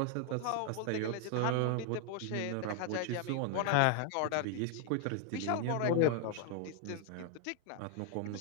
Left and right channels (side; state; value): both; different; correlation 0.00